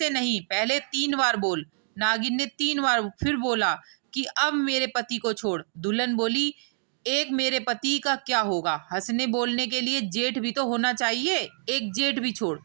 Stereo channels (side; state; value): left; silent; digital silence